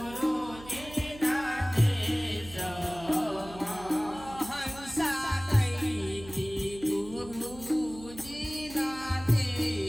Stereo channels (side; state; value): right; noise; hum, 16 dB below the sound